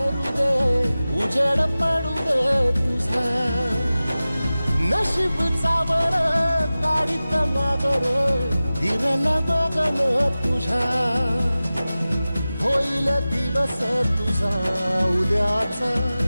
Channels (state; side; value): inverted; both; correlation -0.96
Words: दे उजेड पडू दे तुझा नशीब चावर काढीत मागर दिरल बघन तुझा होईल दिवस तुझा उद्याचा